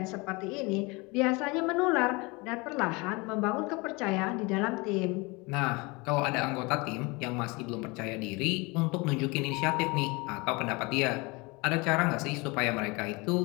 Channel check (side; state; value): right; quieter; 26.4 dB